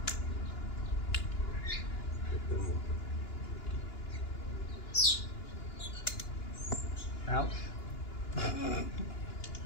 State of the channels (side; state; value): right; late; 2.9 ms